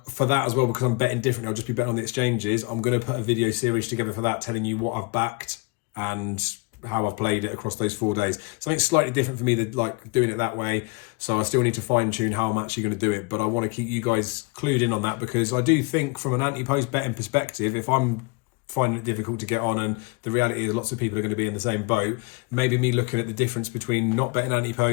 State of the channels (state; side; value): quieter; right; 28.1 dB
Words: for that as well, because I'm betting differently, I'll just be betting on the exchanges. I'm going to put a video series together for that, telling you what I've backed and how I've played it across those 4 days. Something slightly different for me than like doing it that way. So I still need to fine tune how I'm actually going to do it. But I want to keep you guys clued in on that, because I do think from an anti-post betting perspective, if I'm finding it difficult to get on, and the reality is lots of people are going to be in the same boat, maybe me looking at the difference between not betting